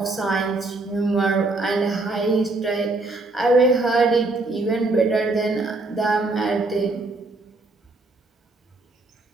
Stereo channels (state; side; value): quieter; left; 3.2 dB